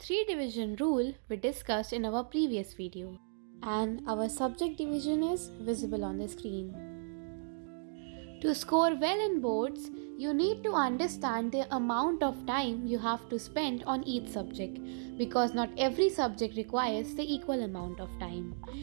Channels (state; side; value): silent; left; digital silence